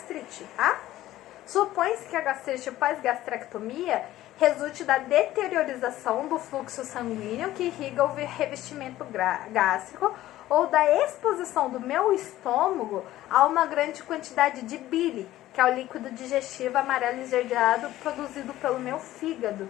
tá? Supõe-se que a gastrite pós-gastrectomia resulte da deteriorização do fluxo sanguíneo que irriga o revestimento gástrico ou da exposição do meu estômago a uma grande quantidade de bile, que é o líquido digestivo amarelo esverdeado produzido pelo meu fígado,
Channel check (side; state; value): right; quieter; 14.8 dB